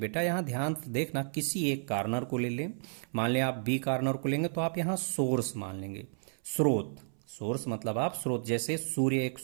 यहाँ ध्यान से देखना, किसी एक कार्नर को ले लें, मान लें आप बी कार्नर को लेंगे तो आप यहाँ सोर्स मान लेंगे, स्रोत, सोर्स मतलब आप स्रोत, जैसे सूर्य एक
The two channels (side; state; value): left; silent; 56 dB below the other